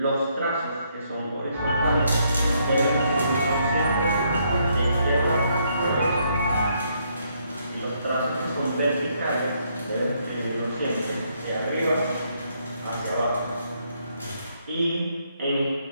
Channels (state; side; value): inverted; both; correlation -0.73